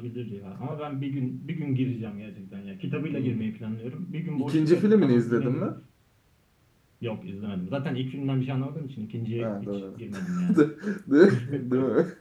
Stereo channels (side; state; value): both; identical; correlation 1.00